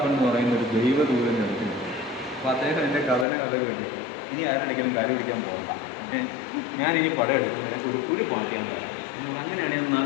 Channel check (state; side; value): drops out; right; at 3.2 s